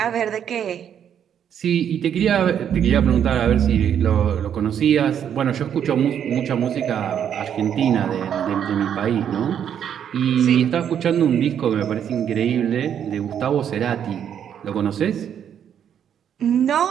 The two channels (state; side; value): quieter; left; 8.9 dB